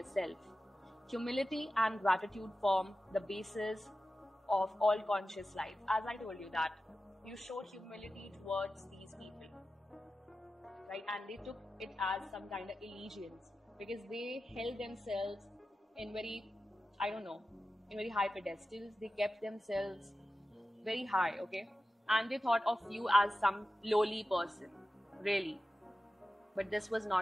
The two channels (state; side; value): normal; both; correlation 0.94